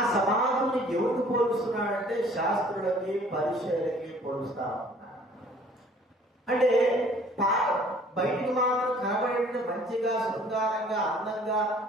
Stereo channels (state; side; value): normal; both; correlation 0.54